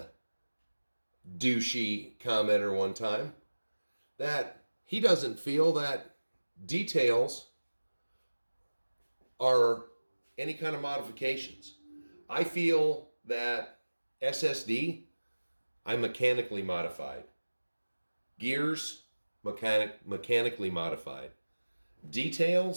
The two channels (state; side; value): inverted; both; correlation -1.00